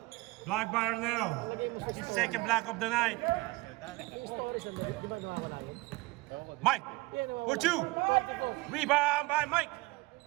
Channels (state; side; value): quieter; left; 22.1 dB